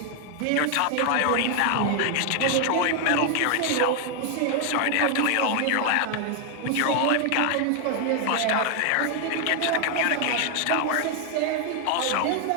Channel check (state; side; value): different; both; correlation 0.00